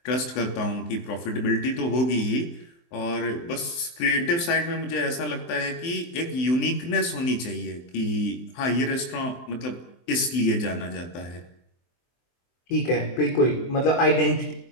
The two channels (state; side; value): late; right; 23 ms